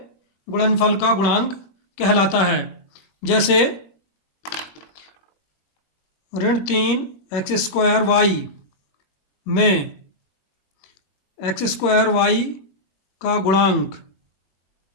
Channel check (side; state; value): right; late; 21 ms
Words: गुणनफल का गुणांक कहलाता है। जैसे ऋण 3x² y में x² y का गुणांक